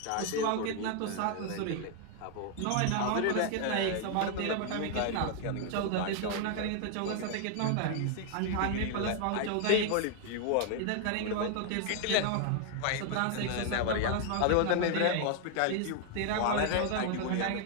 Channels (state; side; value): different; both; correlation 0.00